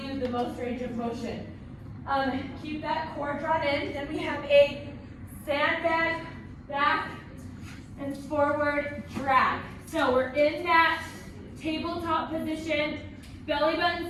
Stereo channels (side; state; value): both; identical; correlation 1.00